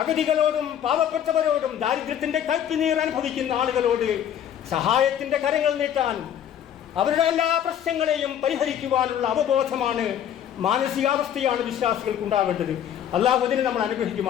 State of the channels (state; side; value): quieter; right; 9.8 dB